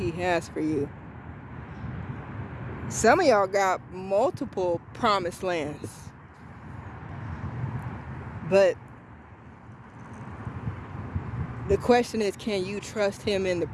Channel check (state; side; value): identical; both; correlation 1.00